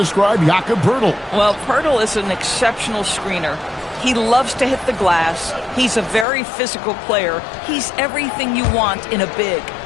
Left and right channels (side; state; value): right; drops out; at 6.2 s